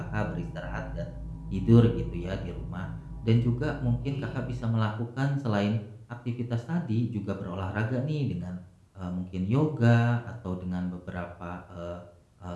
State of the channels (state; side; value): identical; both; correlation 1.00